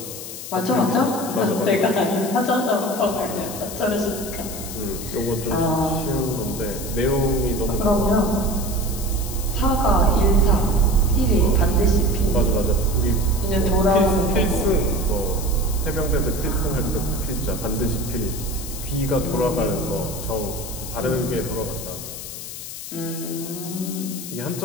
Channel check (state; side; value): noise; left; hiss, 10 dB below the sound